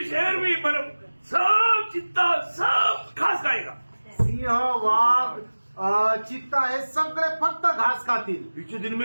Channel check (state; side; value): inverted; both; correlation -1.00